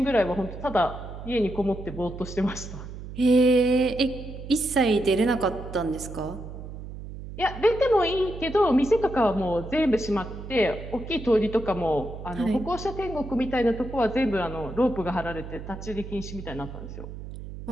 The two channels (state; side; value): noise; right; hum, 11 dB below the sound